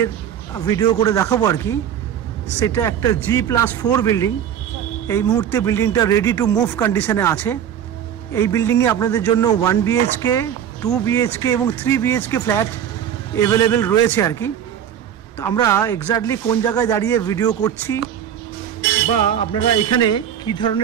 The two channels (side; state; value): left; quieter; 9.4 dB